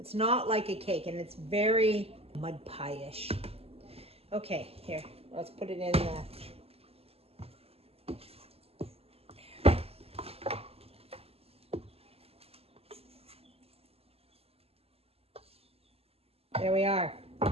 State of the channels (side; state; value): left; late; 0.29 ms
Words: not like a cake, and it's very mud pie-ish. Okay, here, let's put it in the... There we are.